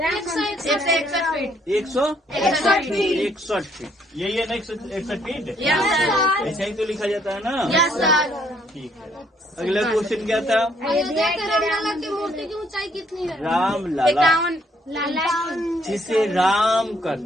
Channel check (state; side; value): normal; both; correlation 0.68